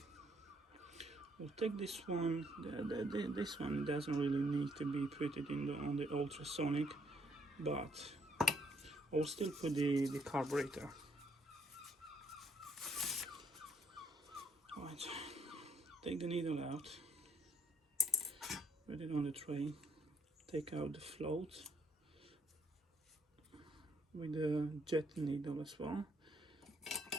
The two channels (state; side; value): normal; both; correlation 0.68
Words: we'll take this one. This one doesn't really need to be put it in on the ultrasonic, but I'll still put the carburetor. Right, take the needle out, put it on the tray, take out the float with the jet needle as well,